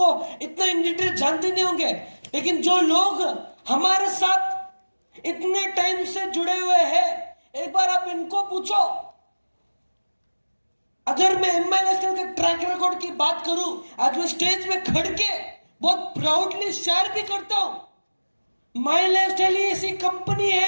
इतना इन डिटेल जानते नहीं होंगे, लेकिन जो लोग हमारे साथ इतने टाइम से जुड़े हुए हैं, एक बार आप इनको पूछो। अगर मैं एमआई नेशनल के ट्रैक रिकॉर्ड की बात करूं, आज मैं स्टेज में खड़ के बहुत प्राउडली शेयर भी करता हूं। माई लाइफस्टाइल ऐसी कंपनी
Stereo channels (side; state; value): both; inverted; correlation -1.00